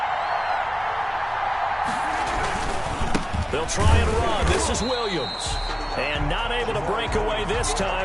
They'll try and run. This is Williams. And not able to break away this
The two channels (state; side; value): identical; both; correlation 1.00